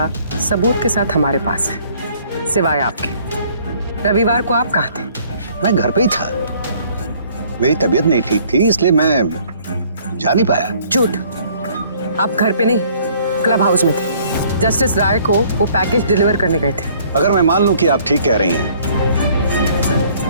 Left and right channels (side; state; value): both; inverted; correlation -0.59